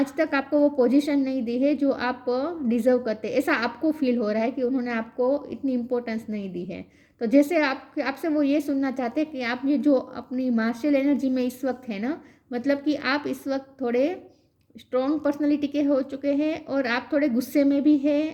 तक आपको वो पोजीशन नहीं दी है जो आप डिज़र्व करते, ऐसा आपको फील हो रहा है कि उन्होंने आपको इतनी इम्पोर्टेंस नहीं दी है। तो जैसे आपसे वो ये सुनना चाहते हैं कि आप ये जो अपनी मार्शल एनर्जी में इस वक्त है ना, मतलब कि आप इस वक्त थोड़े स्ट्रॉन्ग पर्सनालिटी के हो चुके हैं और आप थोड़े गुस्से में भी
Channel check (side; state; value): both; identical; correlation 1.00